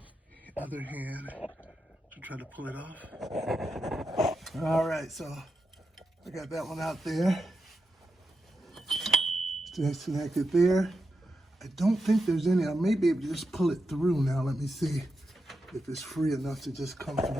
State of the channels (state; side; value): normal; both; correlation 0.87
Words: other hand to try to pull it off. All right, so I got that one out there. Disconnect it there. I don't think there's any. I may be able to just pull it through now. Let me see if it's free enough to just come